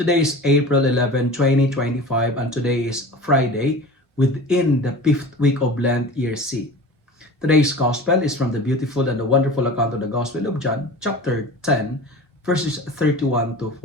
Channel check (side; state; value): both; normal; correlation 0.36